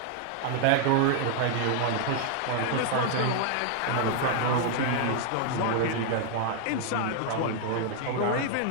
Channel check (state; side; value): different; both; correlation 0.00